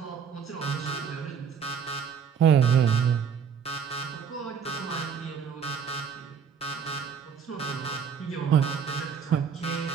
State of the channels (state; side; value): quieter; left; 7.0 dB